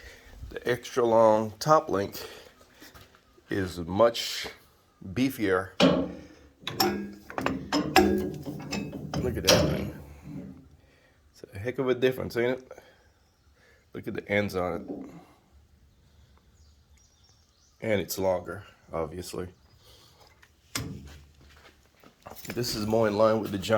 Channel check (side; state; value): both; identical; correlation 1.00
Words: the extra long top link is much beefier. Look at that thing. It's a heck of a difference, ain't it? Look at the ends on it. And it's longer, obviously. This is more in line with the